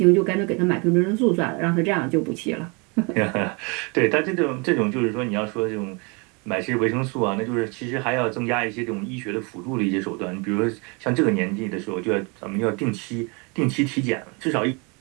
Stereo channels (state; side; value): quieter; left; 31.0 dB